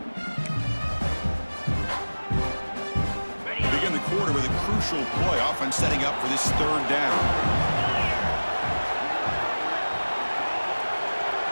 Begin the quarter with a crucial play, often setting up for this 3rd down.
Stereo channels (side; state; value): both; inverted; correlation -1.00